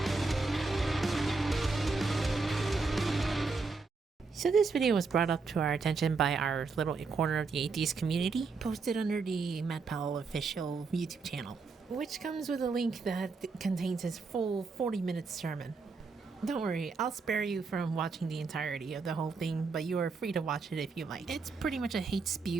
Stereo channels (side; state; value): left; quieter; 4.3 dB